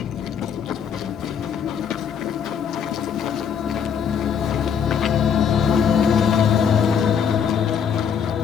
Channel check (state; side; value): quieter; right; 7.5 dB